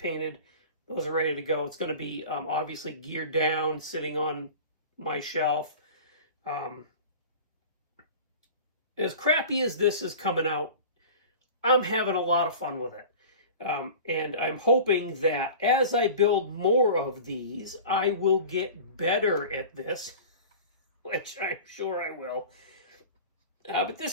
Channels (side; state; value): both; inverted; correlation -0.37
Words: Those are ready to go. It's going to be obviously geared down, sitting on my shelf. As crappy as this is coming out, I'm having a lot of fun with it. And I'm hoping that as I build more of these, I will get better at this, which I'm sure I will. But